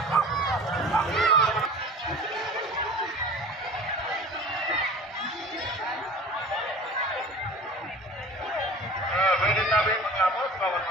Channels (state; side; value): normal; both; correlation 0.41